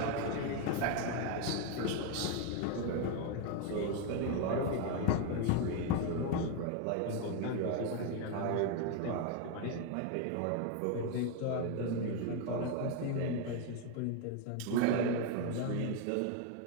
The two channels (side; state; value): both; different; correlation 0.01